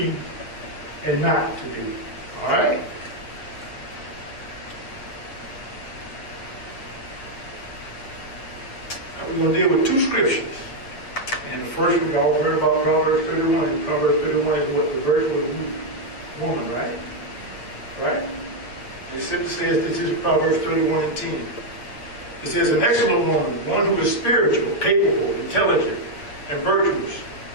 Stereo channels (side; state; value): right; late; 8.4 ms